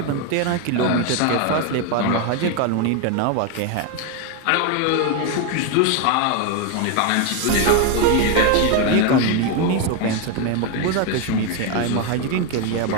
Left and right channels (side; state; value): both; different; correlation 0.01